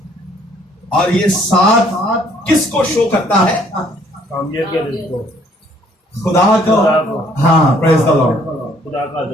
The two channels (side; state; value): both; normal; correlation 0.62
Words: और ये 7 किसको शो करता है? कामलियत के रिज़्क़, खुदा को। हाँ, प्रेज़ द लॉर्ड। खुदा का